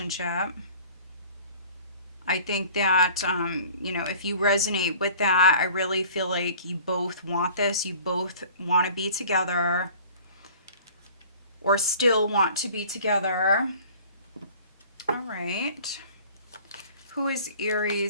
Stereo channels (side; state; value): both; inverted; correlation -0.47